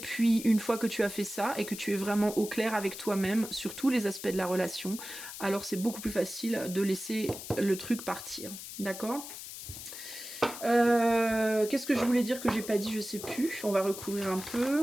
une fois que tu as fait ça et que tu es vraiment au clair avec toi-même sur tous les aspects de la relation, alors c'est beaucoup plus facile de laisser le truc partir. D'accord ? Qu'est-ce que je voulais dire que j'ai pas dit, je sais plus. On va recouvrir un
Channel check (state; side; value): noise; left; hiss, 11 dB below the sound